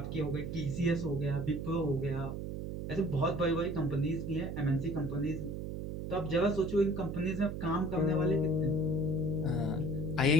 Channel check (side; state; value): right; noise; hum, 5 dB below the sound